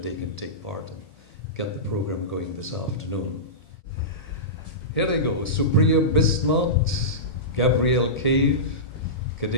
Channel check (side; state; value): both; normal; correlation -0.19